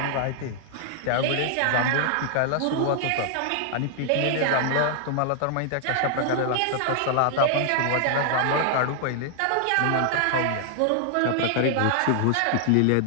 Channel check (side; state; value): both; different; correlation 0.00